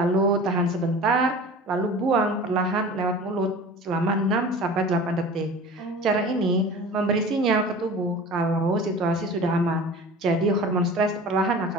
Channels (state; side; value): normal; both; correlation 0.39